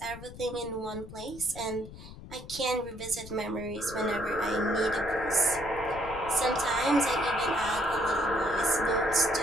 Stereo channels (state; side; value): noise; left; rumble, 15 dB below the sound